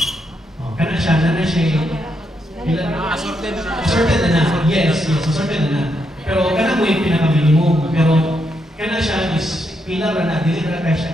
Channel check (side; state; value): both; normal; correlation 0.80